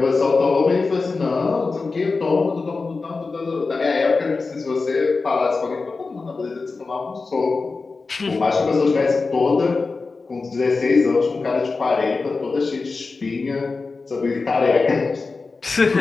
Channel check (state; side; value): quieter; right; 4.1 dB